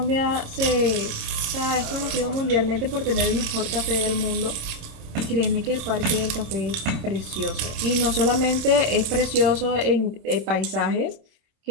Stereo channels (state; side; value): late; left; 27 ms